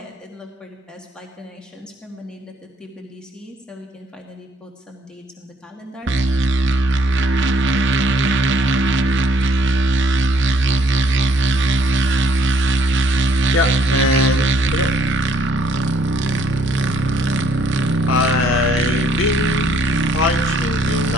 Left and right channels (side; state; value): both; normal; correlation 0.65